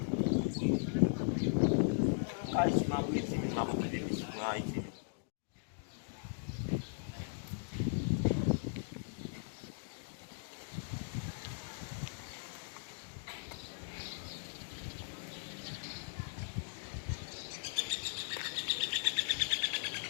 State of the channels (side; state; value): right; silent; digital silence